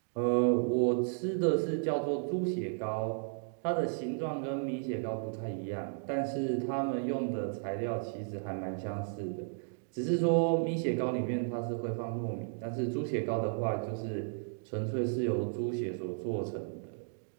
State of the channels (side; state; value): left; silent; digital silence